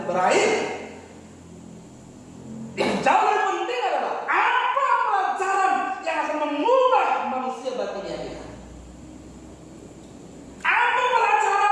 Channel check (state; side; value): identical; both; correlation 1.00